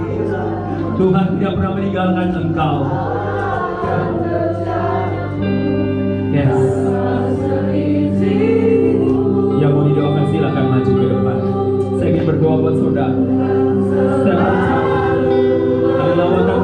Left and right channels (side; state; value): both; identical; correlation 1.00